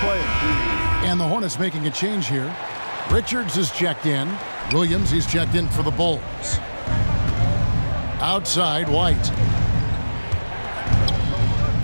And the Hornets making a change here. Richards is checked in. Williams, he's checked in for the Bulls. Outside, White.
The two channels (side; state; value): both; inverted; correlation -1.00